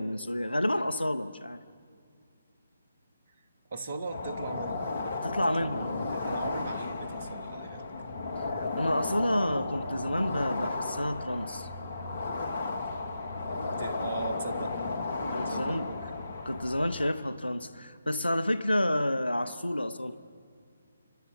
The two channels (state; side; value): inverted; both; correlation -0.88